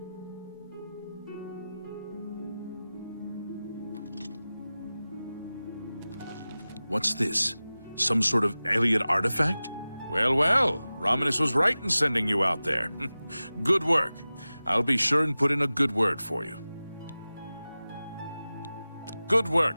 What's this? Some sort of alien artifact? Well, well, Romanus was right in sending you out there. Good work. I'll be sure and put in a good word for you. Good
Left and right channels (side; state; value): both; inverted; correlation -0.96